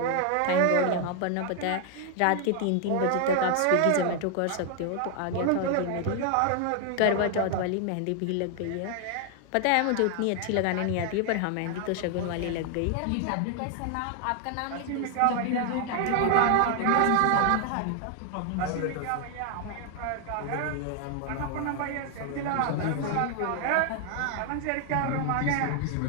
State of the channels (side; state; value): both; different; correlation 0.00